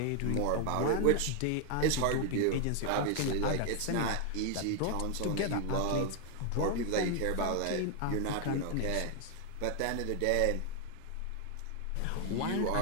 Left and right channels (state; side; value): different; both; correlation 0.00